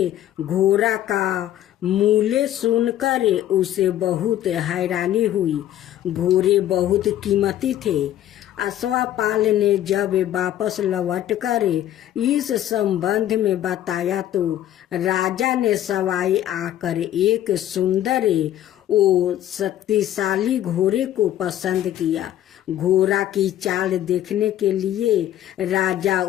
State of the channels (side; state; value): right; quieter; 12.3 dB